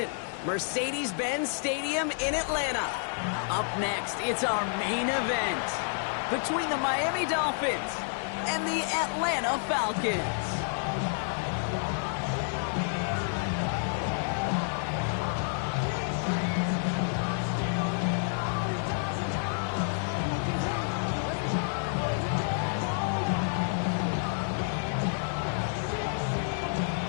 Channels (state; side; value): silent; right; 58 dB below the other